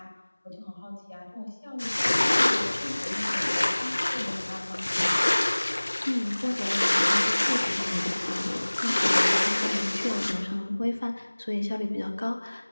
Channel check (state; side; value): inverted; both; correlation -1.00